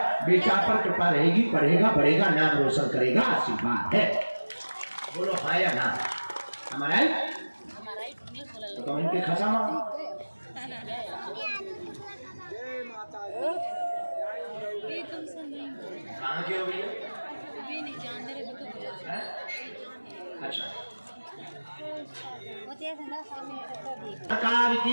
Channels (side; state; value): both; inverted; correlation -1.00